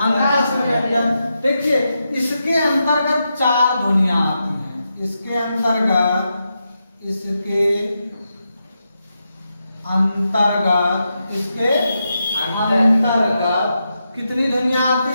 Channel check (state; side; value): inverted; both; correlation -0.86